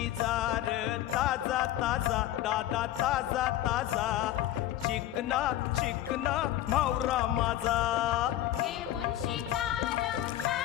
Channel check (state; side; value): quieter; right; 13.3 dB